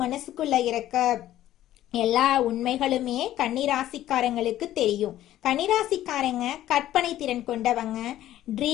மனசுக்குள்ள இருக்க எல்லா உண்மைகளுமே கன்னிராசிக்காரங்களுக்கு தெரியும். கன்னிராசிக்காரங்க கற்பனை திறன் கொண்டவங்க,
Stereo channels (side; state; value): right; quieter; 13.3 dB